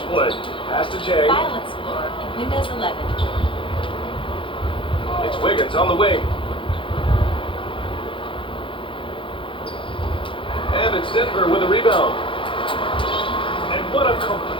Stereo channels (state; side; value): late; right; 0.25 ms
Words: play. Pass to Jay. File Explorer in Windows 11. It's Wiggins on the wing. And it's Denver with a rebound. And what a